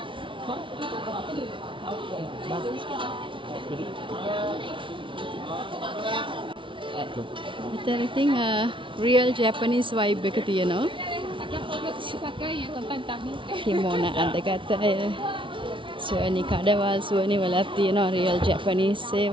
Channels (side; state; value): left; late; 0.25 ms